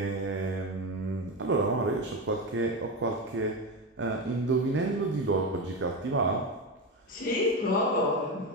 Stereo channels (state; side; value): normal; both; correlation 0.17